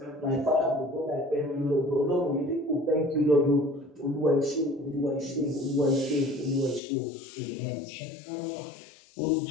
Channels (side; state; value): right; drops out; at 6.8 s